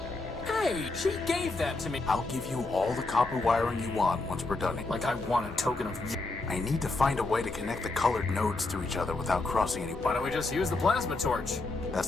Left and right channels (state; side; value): quieter; right; 3.3 dB